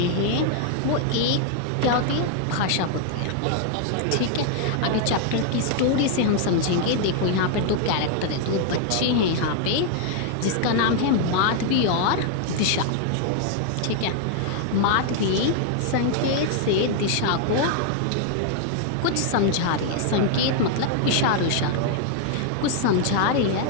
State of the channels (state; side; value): different; both; correlation 0.00